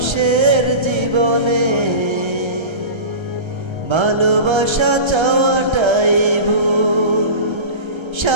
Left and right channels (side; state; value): left; late; 1.3 ms